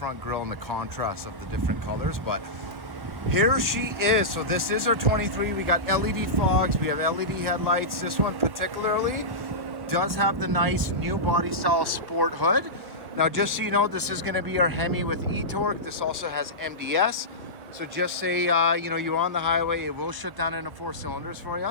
grille and the contrast of the different colors. But here she is. So this is our 23. We got LED fogs, we have LED headlights. This one particularly does have the nice new body style sport hood. Now just so you know, this is going to be our Hemi with e-torque. This also has MDS. So just say, you're on the highway, it will shut down into 4 cylinders for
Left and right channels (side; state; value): left; late; 1.1 ms